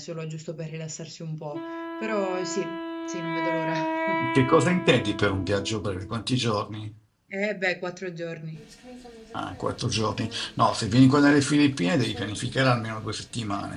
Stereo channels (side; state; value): both; identical; correlation 1.00